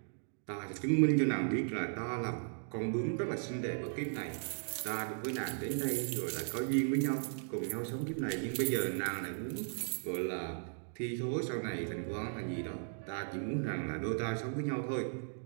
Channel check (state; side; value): silent; left; digital silence